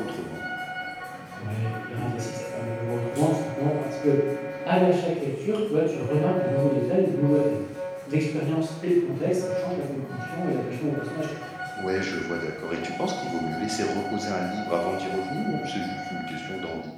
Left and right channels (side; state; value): both; identical; correlation 1.00